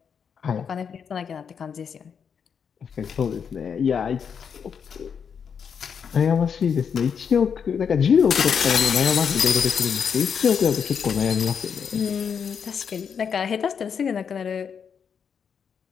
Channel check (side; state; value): right; quieter; 6.9 dB